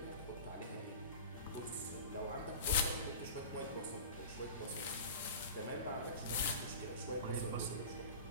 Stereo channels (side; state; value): both; inverted; correlation -0.34